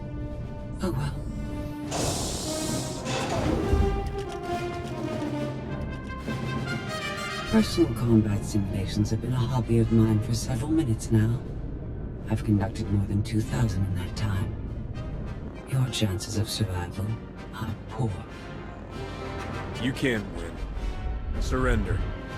Oh well. Personal combat simulations have been a hobby of mine for several minutes now. I've conducted more than 2,000 in that time. Your chances of survival are poor. You can't win. Surrender.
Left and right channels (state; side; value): identical; both; correlation 1.00